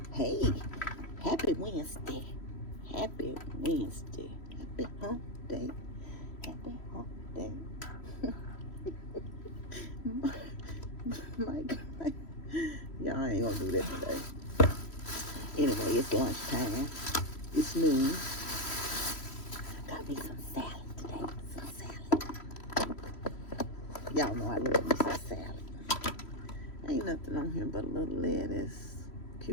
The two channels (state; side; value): late; right; 3.1 ms